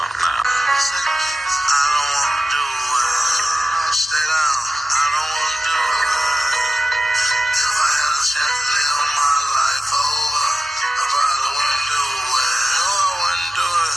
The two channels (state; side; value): normal; both; correlation 0.94